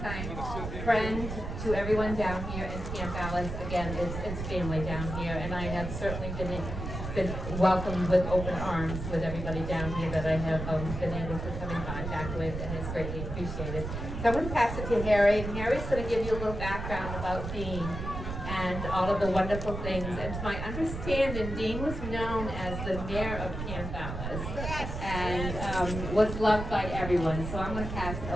friend to everyone down here in Camp Ellis. Again, it's family down here, and I have certainly been welcomed with open arms with everybody down here that I have been able to come in contact with, and it's greatly appreciated. So I'm going to pass it to Harry, and Harry's going to give you a little background about Dean and all of the wonderful things. And to my understanding, Dean was known as the mayor of Camp Ellis, and was loved by everyone. So I'm going to pass it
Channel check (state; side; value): noise; right; rumble, 6 dB below the sound